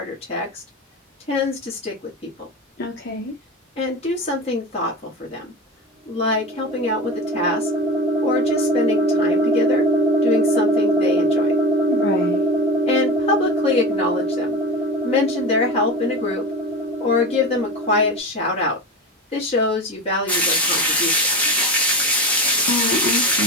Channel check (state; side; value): normal; both; correlation 0.27